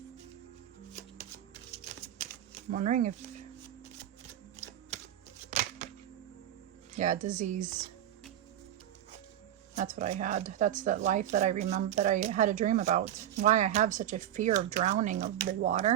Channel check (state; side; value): quieter; left; 11.5 dB